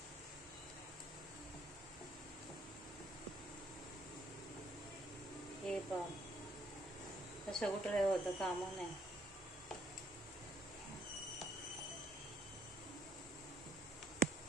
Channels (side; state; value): both; normal; correlation 0.64